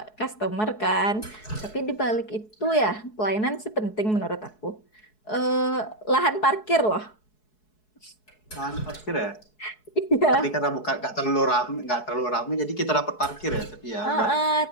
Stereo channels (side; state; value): right; late; 4.7 ms